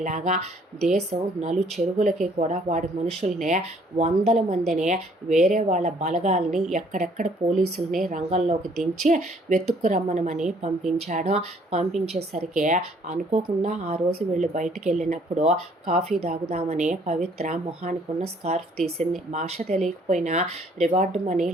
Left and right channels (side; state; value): both; normal; correlation 0.62